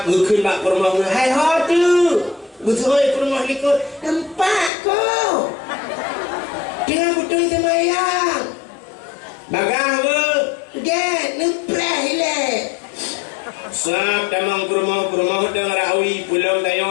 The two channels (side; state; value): right; drops out; at 4.7 s